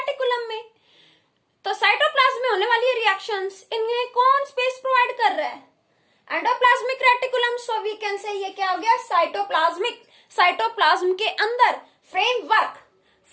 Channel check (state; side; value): identical; both; correlation 1.00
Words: में। तो साइटोप्लाज्म में होने वाली रिएक्शंस, इनमें कौन स्पेस प्रोवाइड कर रहा है? Endoplasmic reticulum. So we can say ये क्या हो गया? साइटोप्लाज्म के अंदर